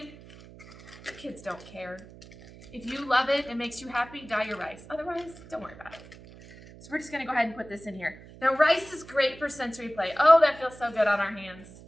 the kids don't care. If you love it, it makes you happy, dye your rice. Otherwise, don't worry about it. So we're just gonna go ahead and put this in here. Now rice is great for sensory play. Oh, that feels so good on our hands.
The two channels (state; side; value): noise; right; hum, 19 dB below the sound